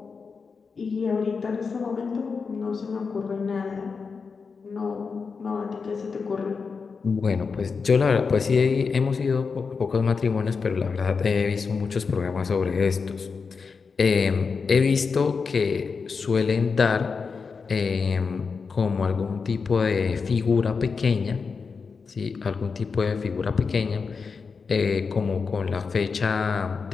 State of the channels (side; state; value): right; quieter; 5.1 dB